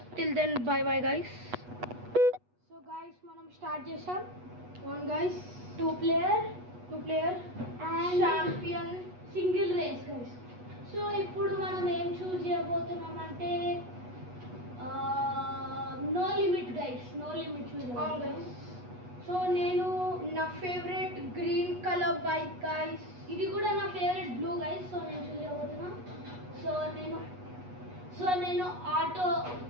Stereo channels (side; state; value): left; late; 8.2 ms